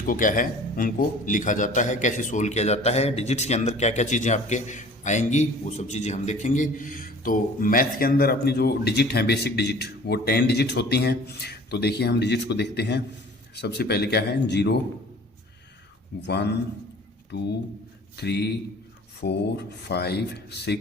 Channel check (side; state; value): both; normal; correlation 0.47